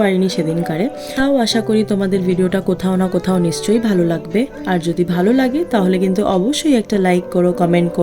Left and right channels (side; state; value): both; identical; correlation 1.00